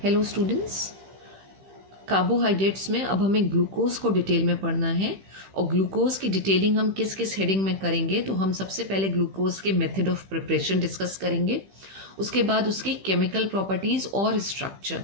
Hello students, carbohydrates में अब हमें ग्लूकोज को डिटेल में पढ़ना है और ग्लूकोज की डिटेलिंग हम किस किस हेडिंग में करेंगे। तो हम सबसे पहले ग्लूकोज के मेथड ऑफ प्रिपरेशन डिस्कस करेंगे, उसके बाद उसकी केमिकल प्रॉपर्टीज़ और स्ट्रक्चर।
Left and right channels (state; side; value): late; left; 15 ms